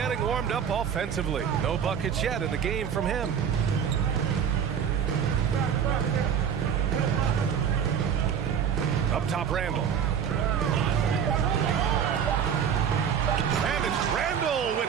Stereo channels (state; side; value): quieter; left; 7.9 dB